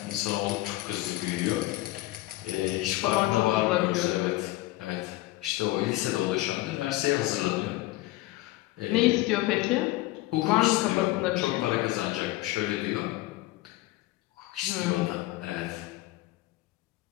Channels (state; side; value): quieter; right; 18.1 dB